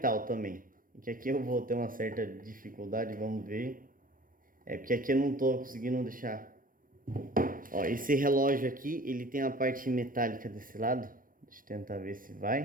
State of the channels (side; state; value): left; late; 0.40 ms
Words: também. Que aqui eu vou ter uma certa dificuldade, vamos ver. Porque aqui eu não estou conseguindo deixar. Ó, esse relógio aqui, ele tem a parte metálica desse lado. Deixa eu tentar ver se